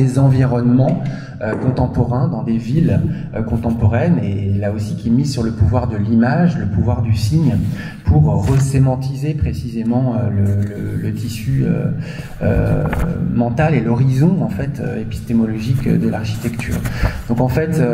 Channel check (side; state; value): both; identical; correlation 1.00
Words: environnements contemporains, dans des villes contemporaines, et là aussi qui mise sur le pouvoir de l'image, le pouvoir du signe, pour resémantiser précisément le tissu mental et l'horizon en fait épistémologique de l'architecture. Donc en fait,